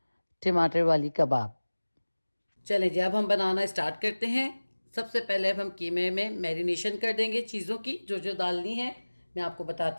टमाटर वाली कबाब। चलें जी, अब हम बनाना स्टार्ट करते हैं। सबसे पहले अब हम कीमे में मैरिनेशन कर देंगे चीज़ों की जो जो डालनी है। मैं आपको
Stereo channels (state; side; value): inverted; both; correlation -1.00